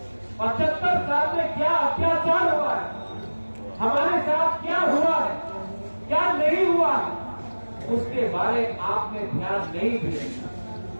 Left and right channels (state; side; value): inverted; both; correlation -1.00